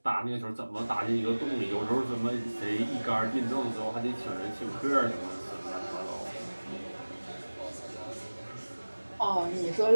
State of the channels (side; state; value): both; inverted; correlation -1.00